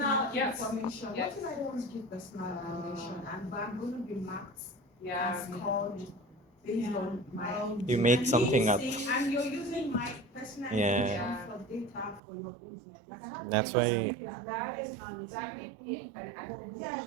Yes. information. Yes. What if I don't give personal information and but I'm going to be marked Yeah. and scored based on my. You make something up. And you're using my personal Yeah. information for data for your business. Like I have That's why- That may be an ethics. Yes,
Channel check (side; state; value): left; drops out; at 12.2 s